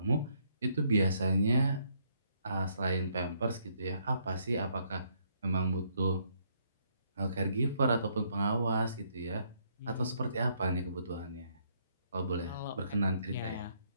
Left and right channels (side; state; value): both; inverted; correlation -0.71